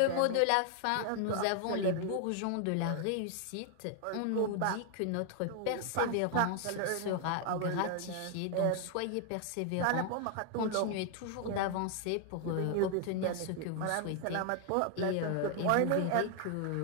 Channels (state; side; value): different; both; correlation 0.00